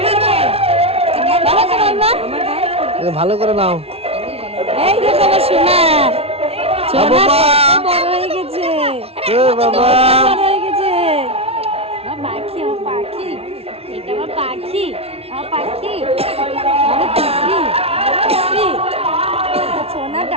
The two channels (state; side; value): late; left; 0.29 ms